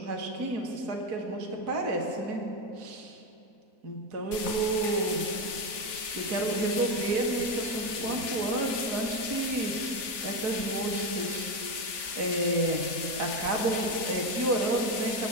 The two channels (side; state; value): left; late; 4.1 ms